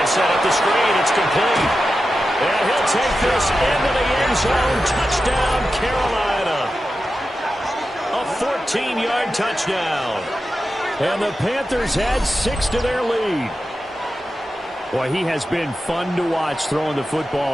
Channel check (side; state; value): both; normal; correlation 0.91